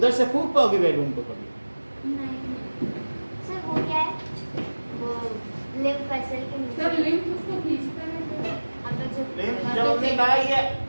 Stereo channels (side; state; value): both; inverted; correlation -1.00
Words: से फूक पाओगे बैलून को कभी नहीं। सर वो क्या है? वो लिम्फ वेसल के नीचे। सर लिम्फ उसको खींचता है, अगर लिम्फ जब हमने कहा